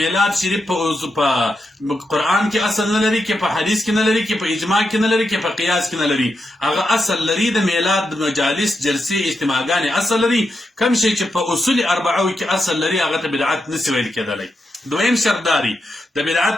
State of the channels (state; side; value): normal; both; correlation 0.86